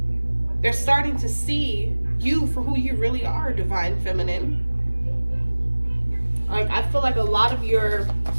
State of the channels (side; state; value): both; inverted; correlation -1.00